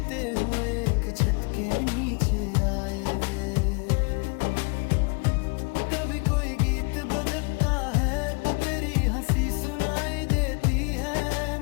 हुए एक छत के नीचे आए थे। कभी कोई गीत बजता है तो तेरी हंसी सुनाई देती है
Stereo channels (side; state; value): right; quieter; 32.6 dB